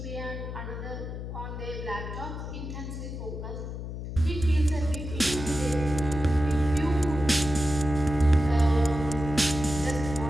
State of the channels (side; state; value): left; noise; hum, 7 dB below the sound